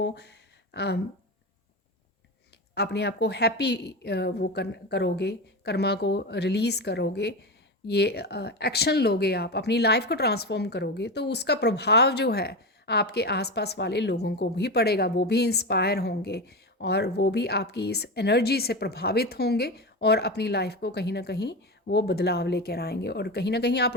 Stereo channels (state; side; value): normal; both; correlation 0.20